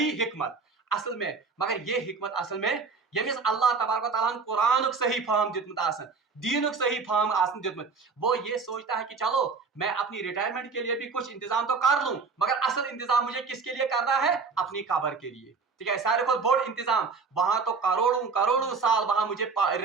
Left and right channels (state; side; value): quieter; left; 4.8 dB